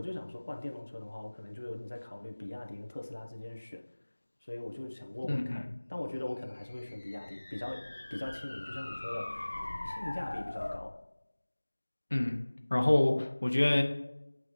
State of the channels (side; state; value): both; inverted; correlation -1.00